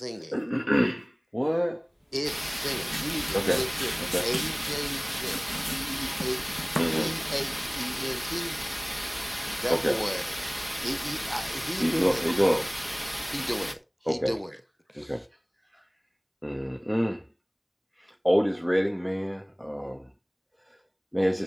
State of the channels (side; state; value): both; identical; correlation 1.00